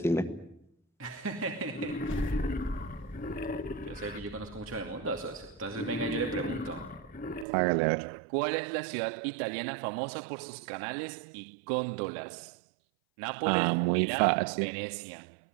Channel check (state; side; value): drops out; left; at 7.5 s